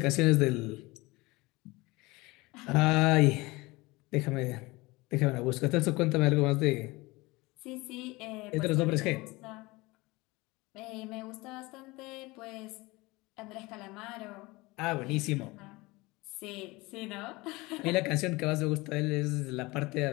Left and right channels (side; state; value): right; quieter; 22.6 dB